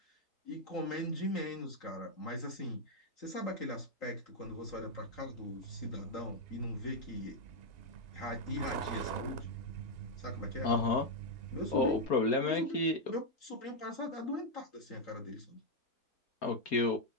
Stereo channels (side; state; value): right; late; 4.3 ms